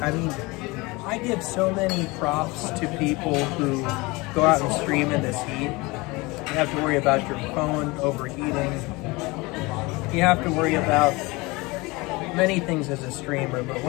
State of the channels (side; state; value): right; quieter; 24.0 dB